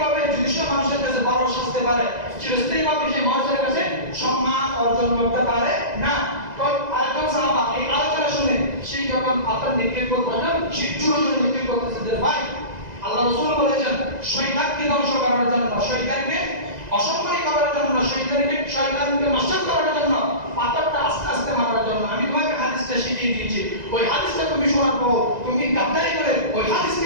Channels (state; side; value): late; left; 2.0 ms